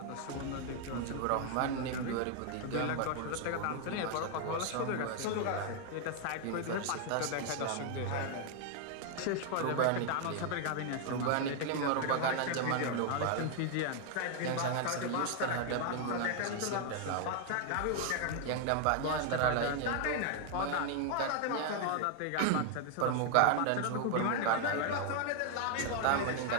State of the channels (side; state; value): both; different; correlation 0.00